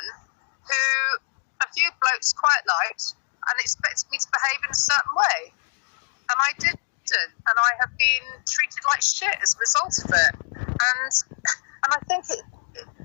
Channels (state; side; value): silent; right; digital silence